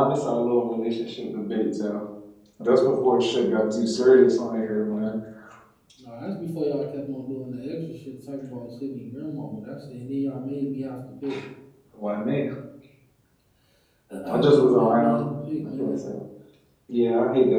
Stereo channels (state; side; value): identical; both; correlation 1.00